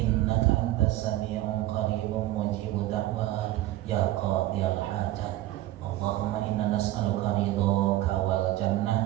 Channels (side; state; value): left; quieter; 15.5 dB